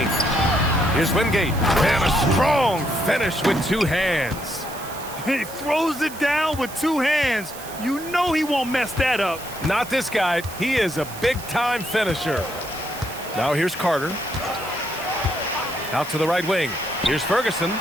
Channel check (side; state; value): right; noise; hiss, 14 dB below the sound